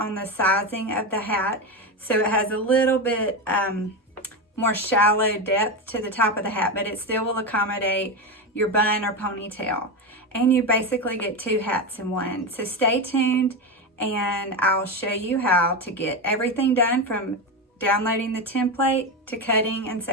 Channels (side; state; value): both; normal; correlation 0.15